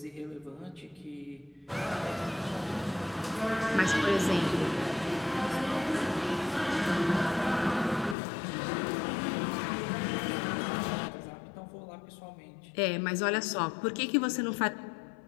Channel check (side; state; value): right; drops out; at 8.2 s